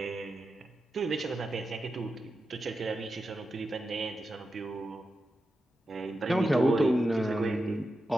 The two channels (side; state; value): both; normal; correlation 0.90